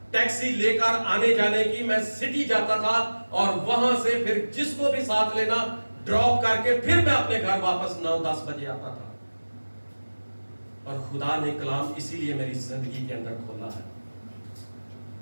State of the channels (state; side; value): inverted; both; correlation -1.00